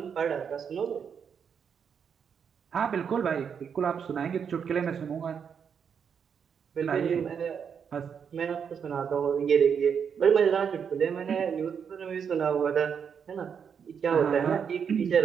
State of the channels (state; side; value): quieter; left; 7.1 dB